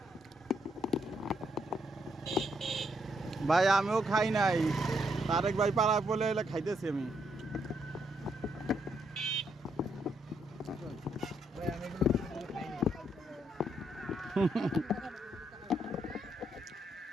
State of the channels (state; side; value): normal; both; correlation 0.75